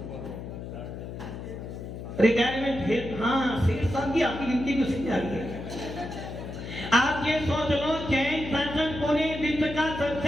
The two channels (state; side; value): noise; left; hum, 9 dB below the sound